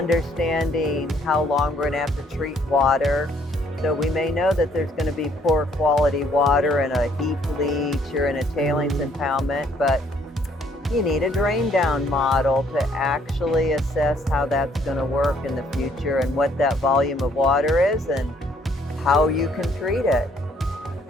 how long we're going to have to treat water. So we may know that there's going to be poor quality water in a heap leach or in a tailings impoundment, but you need a drain down model to actually assess how that's going to work in the future and what that volume of water is and how you can treat it.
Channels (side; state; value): both; normal; correlation 0.65